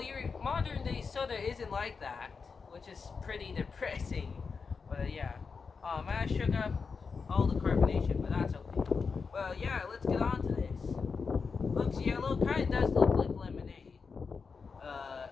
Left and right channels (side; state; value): right; quieter; 5.1 dB